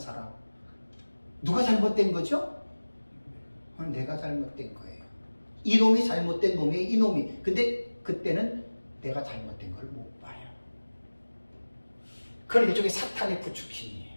누가 잘못된 거죠? 내가 잘못된 거예요. 이놈이 잘못된 놈이에요. 이놈이. 근데 그때는 내가 잘못된 걸 못 봐요. 그건 일종의 사탄의 부추김이에요.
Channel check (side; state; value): both; inverted; correlation -1.00